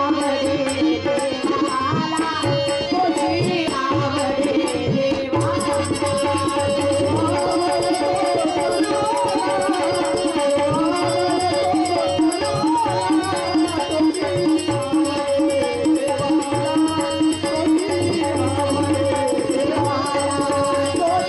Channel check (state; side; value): identical; both; correlation 1.00